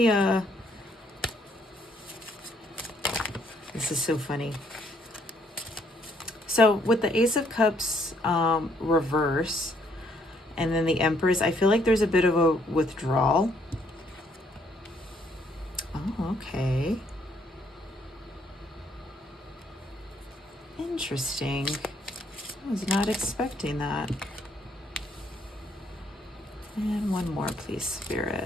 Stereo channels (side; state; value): both; normal; correlation 0.68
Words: this is so funny. So with the Ace of Cups reverse, and then the Empress, I feel like there's a bit of a withdrawal. Oh, okay. Interesting. I was not expecting that. And one more, please,